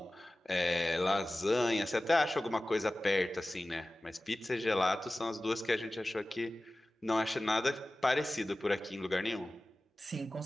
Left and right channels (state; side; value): normal; both; correlation 0.96